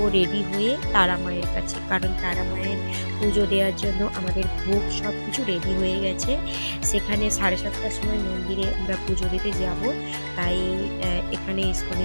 রেডি হয়ে তারা মায়ের কাছে, কারণ তারা মায়ের পুজো দেওয়ার জন্য আমাদের ভোগ সব কিছু রেডি হয়ে গেছে। সেখানে 7:30টার সময় মন্দিরে আমরা পুজো দিতে যাব। তাই এখানে ইস্কনে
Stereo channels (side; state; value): both; inverted; correlation -1.00